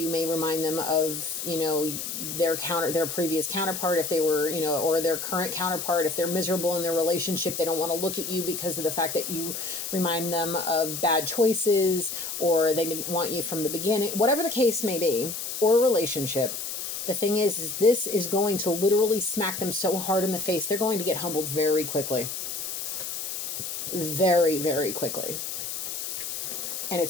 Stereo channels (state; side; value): noise; left; hiss, 5 dB below the sound